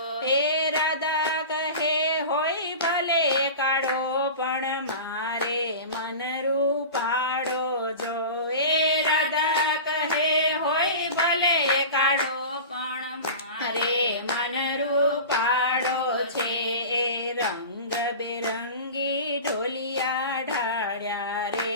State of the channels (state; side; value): inverted; both; correlation -0.33